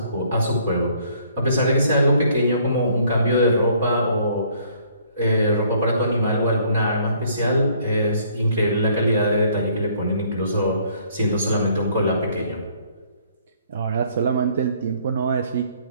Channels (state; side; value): inverted; both; correlation -0.62